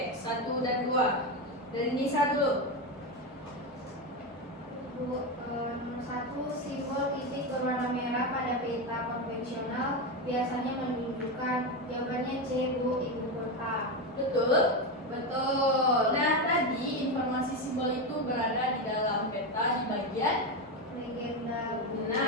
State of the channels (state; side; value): normal; both; correlation 0.13